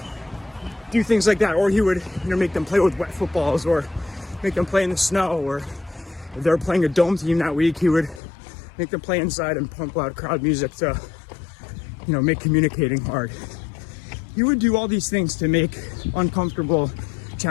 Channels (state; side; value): drops out; right; at 8.2 s